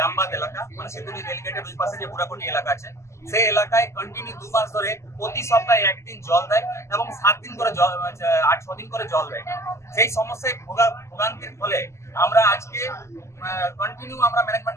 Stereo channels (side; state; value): right; late; 0.13 ms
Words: এলাকা, মানে সিধুলি রেলগেটের ওই পাশে যে বুড়াকুটি এলাকা আছে, সেই এলাকায় কন্টিনিউ 2 মাস ধরে প্রতি সপ্তাহে একদিন জল দেয় এবং 7 দিন করে জল, 8-6 দিন করে জল দেয়। সেই সমস্যায় ভোগান্তির ফলে আমরা আজকে কন্টিনিউ আমরা